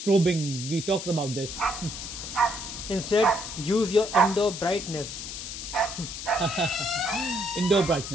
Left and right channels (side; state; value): left; noise; hiss, 8 dB below the sound